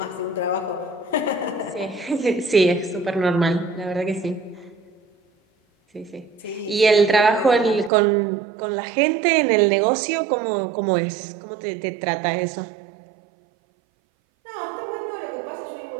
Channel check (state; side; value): drops out; left; at 7.9 s